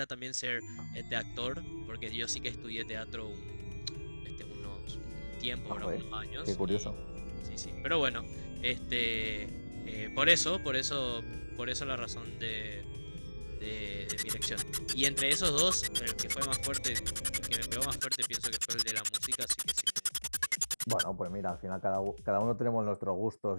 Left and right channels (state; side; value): inverted; both; correlation -1.00